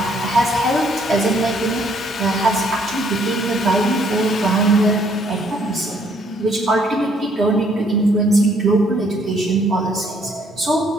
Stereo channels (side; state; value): both; normal; correlation 0.65